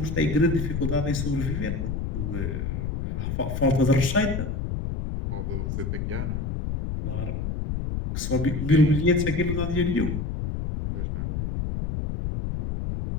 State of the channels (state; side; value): noise; left; rumble, 2 dB below the sound